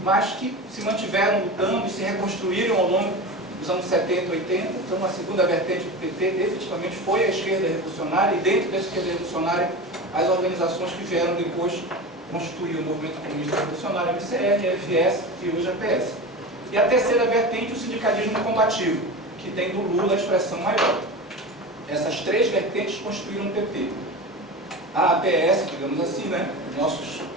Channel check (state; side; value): normal; both; correlation 0.28